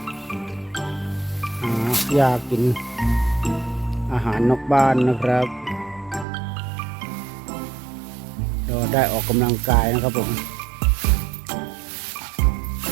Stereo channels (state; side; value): drops out; left; at 6.2 s